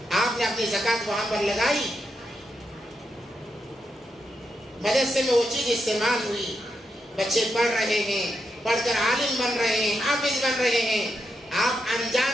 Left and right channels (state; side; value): normal; both; correlation 0.84